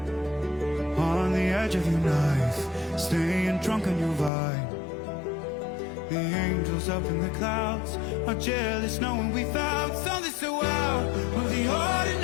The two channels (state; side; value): drops out; right; at 4.3 s